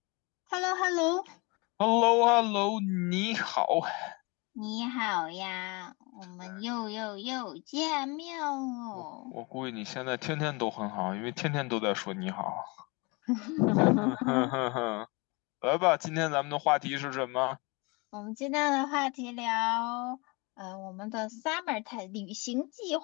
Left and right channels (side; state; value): right; quieter; 28.1 dB